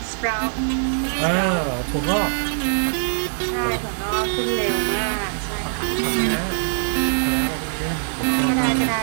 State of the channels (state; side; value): silent; left; digital silence